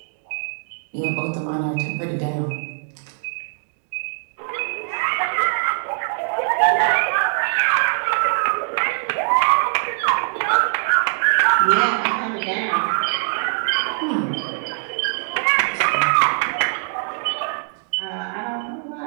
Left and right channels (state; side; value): silent; left; digital silence